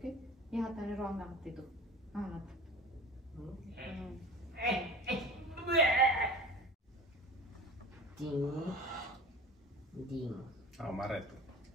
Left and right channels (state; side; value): normal; both; correlation 0.37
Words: या हाताने रॉंग आणते तू हा ना Ding. Oh, marah itu.